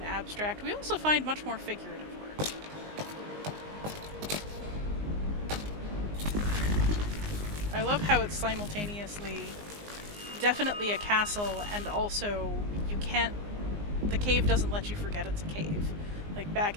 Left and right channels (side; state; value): left; late; 19 ms